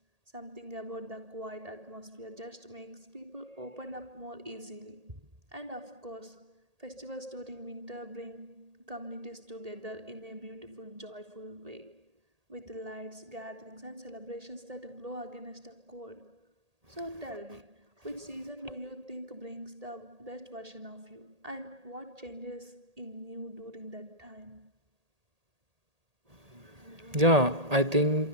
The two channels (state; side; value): late; left; 1.8 ms